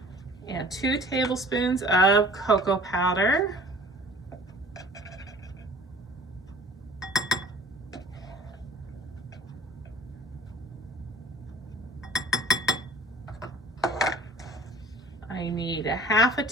and 2 tablespoons of cocoa powder, I need a 1/2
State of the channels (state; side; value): normal; both; correlation 0.47